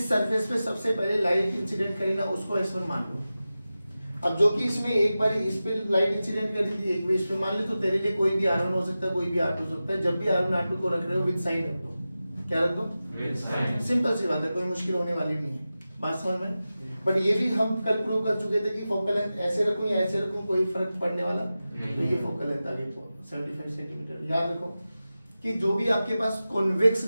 सरफेस पे सबसे पहले लाइट इंसिडेंट करी ना उसको S1 मान लो। अब जो कि इसमें एक बार इस पे लाइट इंसिडेंट कर दी थी एक भी इस पे मान ले, तो तेरे लिए कोई भी R1 हो सकता है कोई भी R2 हो सकता है। जब भी R1 R2 को रख रहे हो विद साइन रख दो, क्या रख दो विद साइन, सिंपल सी बात है, कोई मुश्किल होने वाली नहीं है, बात समझ में। बट ये भी हम कल प्रूव कर चुके थे कि फोकल लेंथ ऐसे रखूं या ऐसे रखूं कोई फर्क पड़ने वाला, तो ये फोकल लेंथ आ गई 75 सेंटीमीटर। याद रखो कि जो भी आपके पास कॉन्वेक्स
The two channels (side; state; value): both; inverted; correlation -0.94